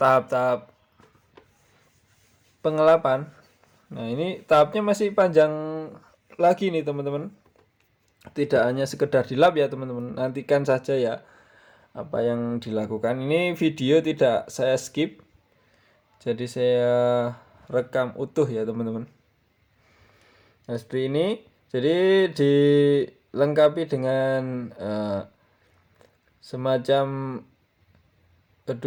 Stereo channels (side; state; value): both; identical; correlation 1.00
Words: tahap-tahap pengelapan. Nah, ini tahapnya masih panjang lagi nih teman-teman. Tidak hanya sekedar dilap ya teman-teman, nantikan saja ya apa yang dilakukan. Ini video tidak saya skip, jadi saya rekam utuh ya teman-teman. Nah, seperti ini. Jadi dilengkapi dengan semacam